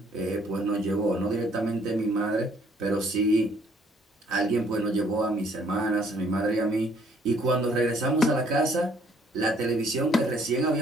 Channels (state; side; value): normal; both; correlation 0.63